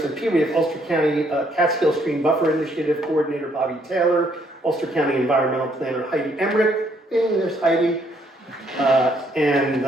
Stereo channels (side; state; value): both; normal; correlation 0.69